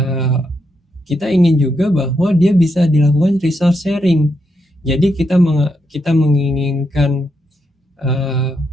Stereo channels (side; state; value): both; normal; correlation 0.81